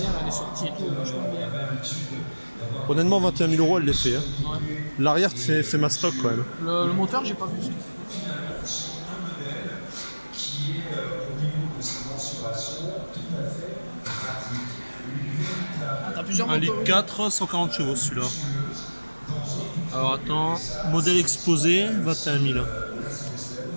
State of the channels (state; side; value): inverted; both; correlation -1.00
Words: elle est sortie et tout, vachement bien. Honnêtement, 21 000 € elle les fait. Hein. Ouais. L'arrière, c'est ma stock quand même. Le moteur, j'ai pas vu ça. Ah, t'as plusieurs 1 moteurs. litre 4, 140 chevaux celui-là. Alors attends, modèle exposé, 21 000. Ouais,